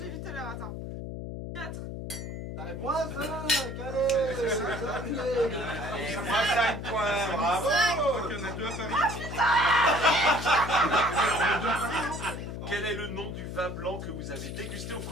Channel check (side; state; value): left; noise; hum, 7 dB below the sound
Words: vu tout à l'heure, attends. 4. Moins 5, allez, c'est terminé. Allez, moins 5 points, bravo. Ok, on est deux à Paris. Quel est le nom du vin blanc que vous avez dégusté au